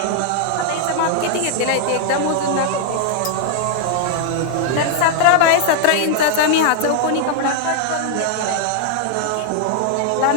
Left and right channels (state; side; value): different; both; correlation -0.01